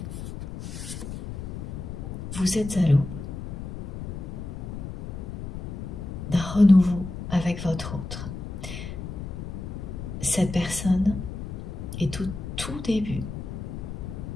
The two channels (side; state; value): left; noise; rumble, 8 dB below the sound